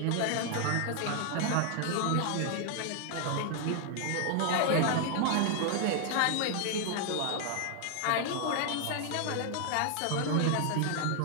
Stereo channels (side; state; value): both; different; correlation 0.00